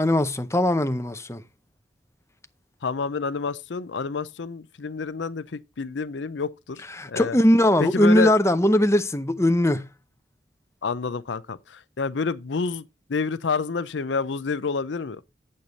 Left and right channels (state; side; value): normal; both; correlation 0.65